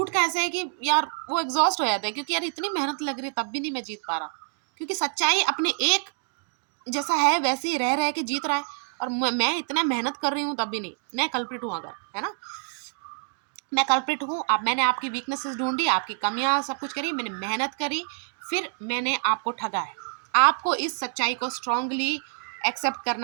का ऐसा है कि यार वो एग्जॉस्ट हो जाता है, क्योंकि यार इतनी मेहनत लग रही है तब भी नहीं मैं जीत पा रहा, क्योंकि सच्चाई अपने एक जैसा है वैसे ही रह के जीत रहा है, और मैं इतना मेहनत कर रही हूँ तब भी नहीं। मैं कल्प्रिट हूँ अगर, है ना, मैं कल्प्रिट हूँ। अब मैंने आपकी वीकनेसेस ढूंढी, आपकी कमियां सब कुछ करी, मैंने मेहनत करी, फिर मैंने आपको ठगा है। आपको इस सच्चाई को स्ट्रांगली एक्सेप्ट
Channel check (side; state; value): left; silent; digital silence